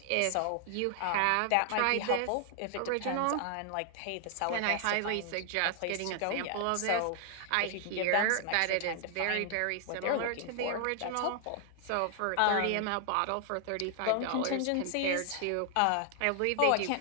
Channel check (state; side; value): different; both; correlation 0.00